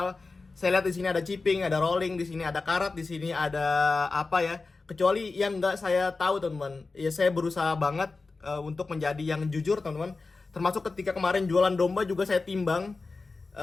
saya lihat di sini ada chipping, ada rolling, di sini ada karat, di sini ada apa ya. Kecuali yang nggak saya tahu, teman-teman. Ya saya berusaha banget untuk menjadi yang jujur, teman-teman. Termasuk ketika kemarin jualan domba juga saya timbang.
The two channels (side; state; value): right; quieter; 3.9 dB